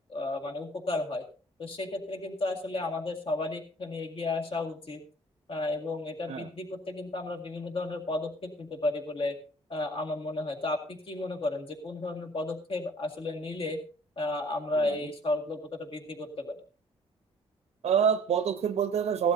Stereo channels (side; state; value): both; normal; correlation 0.51